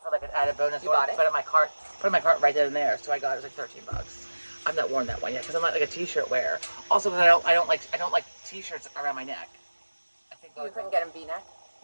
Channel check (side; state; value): both; inverted; correlation -1.00